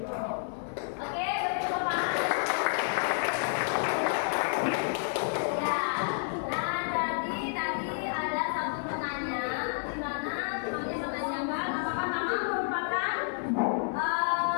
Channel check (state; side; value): silent; right; 58 dB below the other